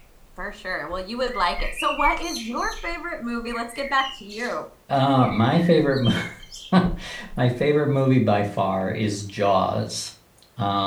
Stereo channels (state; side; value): identical; both; correlation 1.00